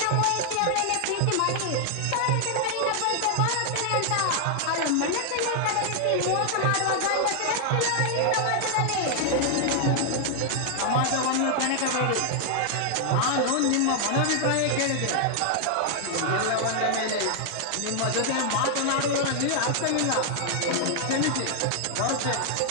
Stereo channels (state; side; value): different; both; correlation 0.00